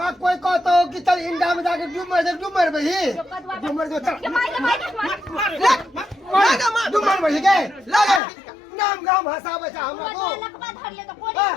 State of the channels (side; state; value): right; drops out; at 8.2 s